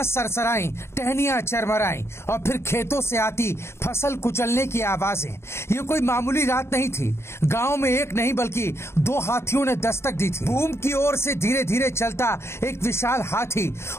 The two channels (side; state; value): right; late; 0.13 ms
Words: सरसराई, टहनियां चरमराई और फिर खेतों से आती फसल कुचलने की आवाजें। ये कोई मामूली रात नहीं थी। गांव में एक नहीं बल्कि दो हाथियों ने दस्तक दी थी। भूम की ओर से धीरे धीरे चलता एक विशाल हाथी